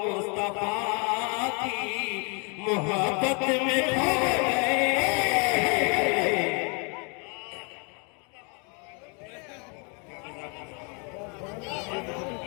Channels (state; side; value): quieter; right; 34.9 dB